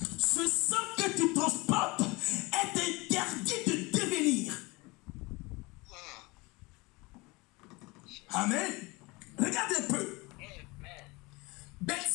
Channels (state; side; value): quieter; right; 24.4 dB